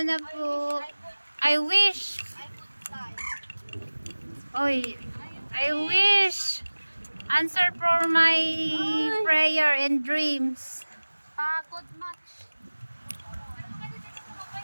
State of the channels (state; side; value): inverted; both; correlation -1.00